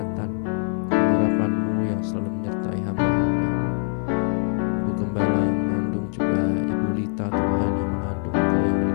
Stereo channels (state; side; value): silent; right; 63 dB below the other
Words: pengurapan-Mu yang selalu menyertai hamba-hamba-Mu. Ibu Gembala yang mengandung, juga Ibu Lita Tuhan yang mengandung, Engkau yang